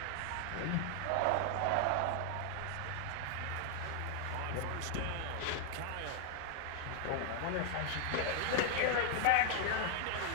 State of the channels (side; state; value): both; different; correlation 0.00